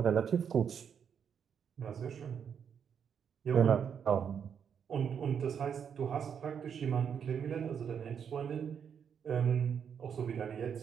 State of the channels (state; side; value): quieter; left; 7.6 dB